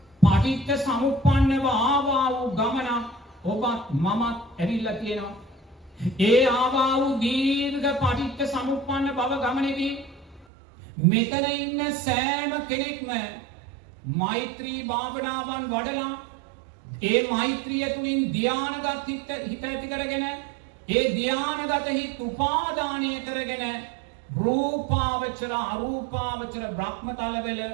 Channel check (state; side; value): drops out; left; at 10.5 s